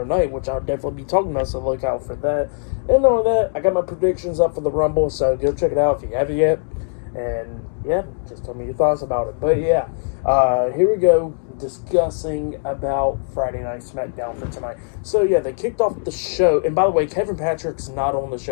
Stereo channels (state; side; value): silent; right; digital silence